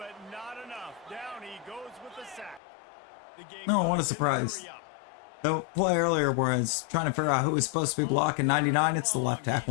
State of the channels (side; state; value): right; drops out; at 2.6 s